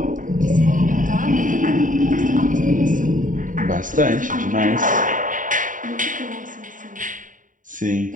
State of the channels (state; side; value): late; left; 0.38 ms